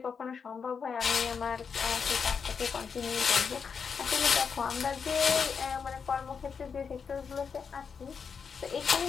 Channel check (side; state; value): right; quieter; 6.1 dB